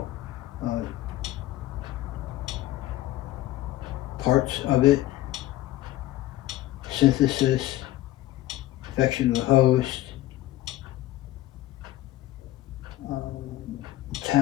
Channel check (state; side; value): quieter; right; 15.6 dB